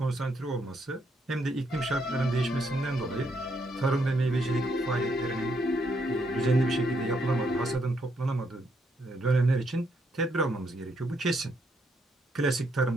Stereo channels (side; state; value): both; normal; correlation 0.75